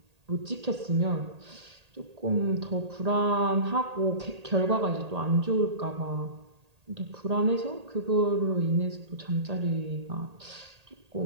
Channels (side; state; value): left; late; 1.8 ms